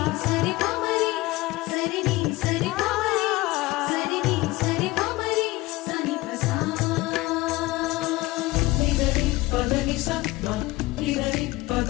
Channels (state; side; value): quieter; right; 19.8 dB